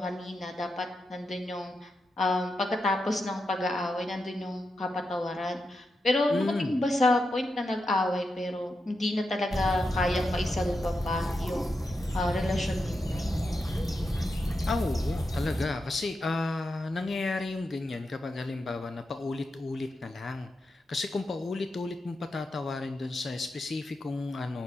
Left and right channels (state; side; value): normal; both; correlation 0.87